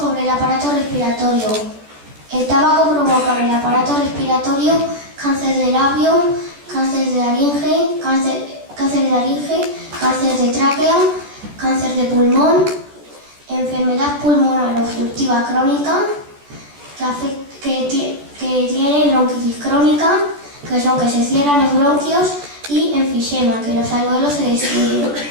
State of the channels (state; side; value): late; left; 14 ms